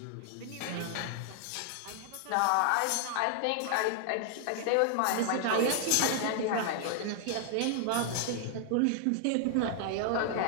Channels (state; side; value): different; both; correlation 0.00